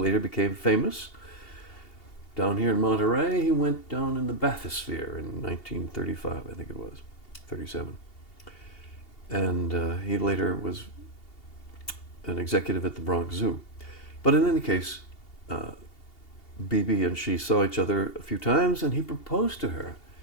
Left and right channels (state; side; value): late; right; 2.8 ms